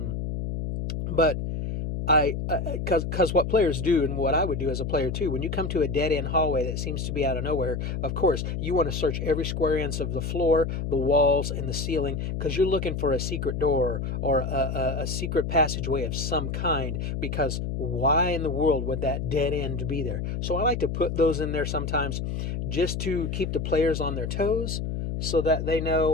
But because what players do, and what I would do as a player too, when you come to a dead end hallway that seems to be out of nowhere, of course, you want to search every square inch of the floor, the walls, and the ceiling, because you're looking for a secret door or a secret passageway of some kind, because why in the world would that dead end be there? So I like to put those in there sometimes just to keep the players on their toes so that they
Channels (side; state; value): left; noise; hum, 3 dB below the sound